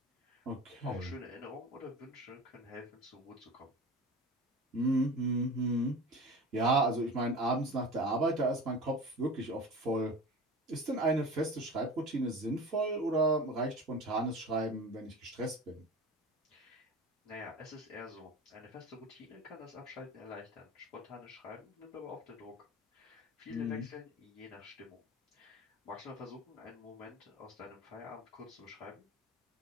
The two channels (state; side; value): normal; both; correlation 0.34